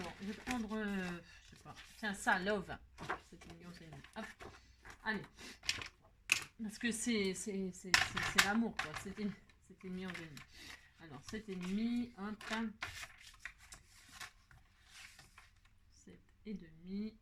je vais prendre, je sais pas. Tiens, ça, love. 7,5, 11,5. Hop. Allez. Parce que c'est l'amour, quoi. 7,5, 11,5. Alors, 7,5, hop. 7,5.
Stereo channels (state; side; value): identical; both; correlation 1.00